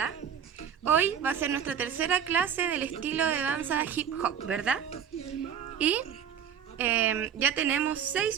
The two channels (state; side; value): quieter; left; 8.3 dB